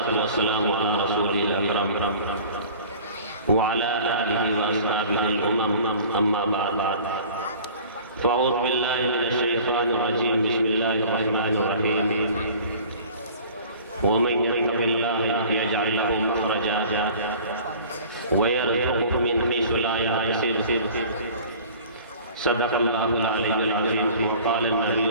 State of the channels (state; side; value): inverted; both; correlation -0.45